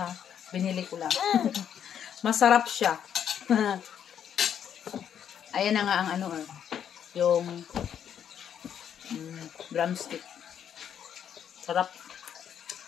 Binili ko lang. Masarap siya. Ayan na nga ang ano yung drumstick. Sarap.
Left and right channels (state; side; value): quieter; right; 8.9 dB